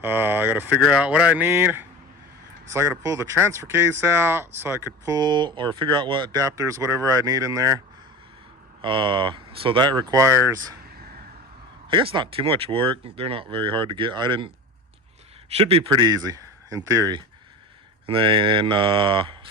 I got to figure out what I need. So I got to pull the transfer case out so I could pull or figure out what adapters, whatever I need in there. So that requires, I guess, not too much work. They're not very hard to get. Should be pretty easy in theory. And then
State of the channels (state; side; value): normal; both; correlation 0.32